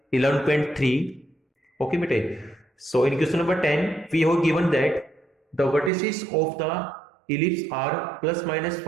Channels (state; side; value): drops out; left; at 5.9 s